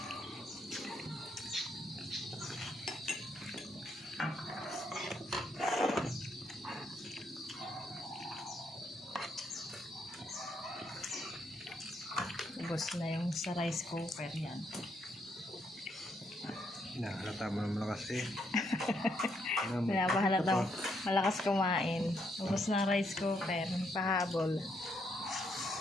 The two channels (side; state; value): both; normal; correlation 0.75